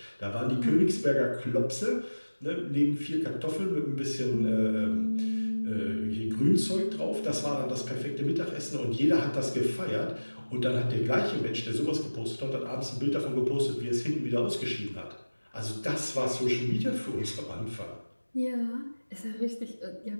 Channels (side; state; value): both; inverted; correlation -1.00